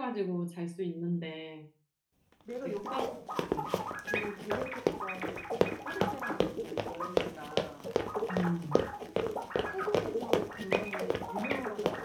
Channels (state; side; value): identical; both; correlation 1.00